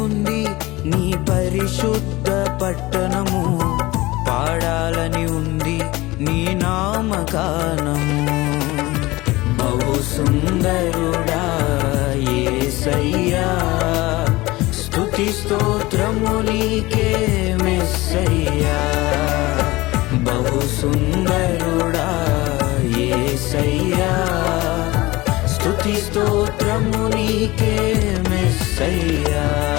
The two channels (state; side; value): quieter; right; 20.3 dB